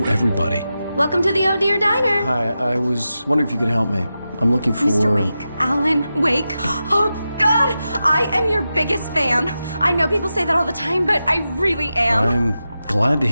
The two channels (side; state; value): both; inverted; correlation -0.91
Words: everybody. Welcome to the Oh Dear Diner. Hi, I was wondering if you could help me. I'm looking for... Mr. Wake. Alan Wake. Oh, God! I am your biggest fan. I know people say that all the time, but I really am. I'm glad to